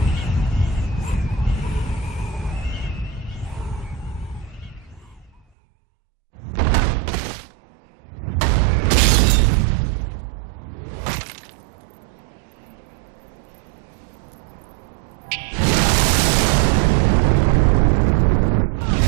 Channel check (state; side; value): drops out; left; at 5.4 s